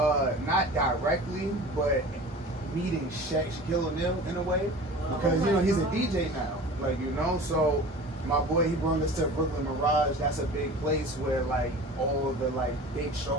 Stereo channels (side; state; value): both; normal; correlation 0.39